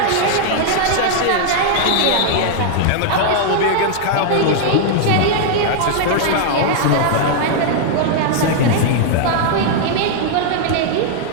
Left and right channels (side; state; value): both; different; correlation -0.01